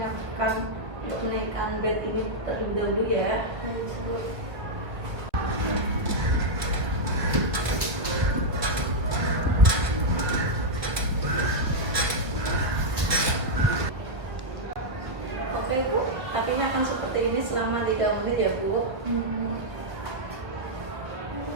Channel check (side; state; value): left; late; 1.3 ms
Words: untuk menaikkan bed ini terlebih dahulu ya. Oke Bu, kakinya akan seperti ini selama 3 menit ya Bu.